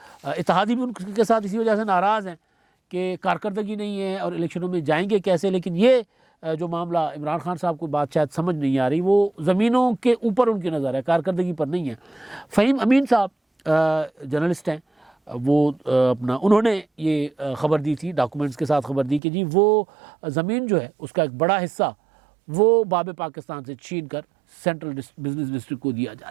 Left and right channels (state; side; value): drops out; left; at 19.2 s